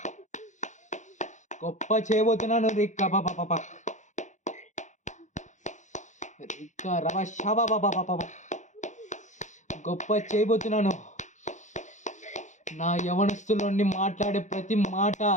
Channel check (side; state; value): right; late; 0.35 ms